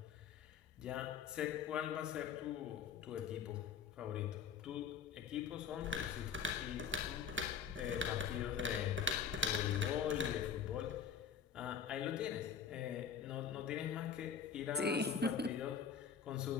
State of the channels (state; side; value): quieter; right; 6.9 dB